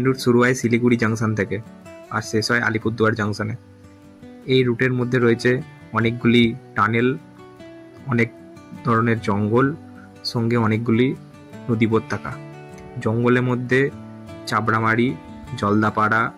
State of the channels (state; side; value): identical; both; correlation 1.00